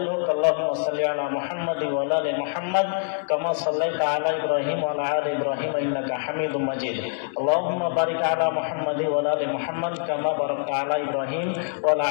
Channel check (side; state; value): right; silent; digital silence